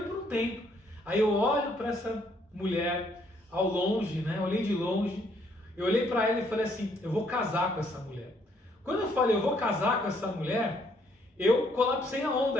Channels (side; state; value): both; normal; correlation 0.68